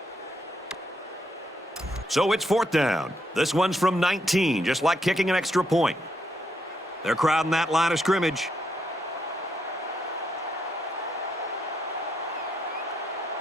So it's fourth down. This one's from 19, just like kicking an extra point. They're crowding that line of scrimmage.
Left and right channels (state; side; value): normal; both; correlation 0.78